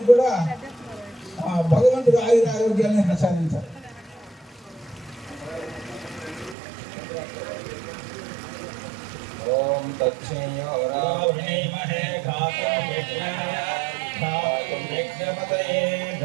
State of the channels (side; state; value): left; drops out; at 6.6 s